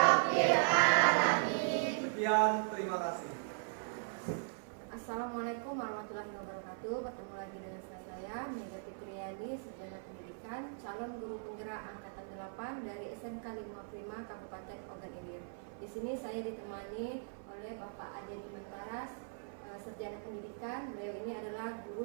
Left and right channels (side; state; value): left; silent; 52 dB below the other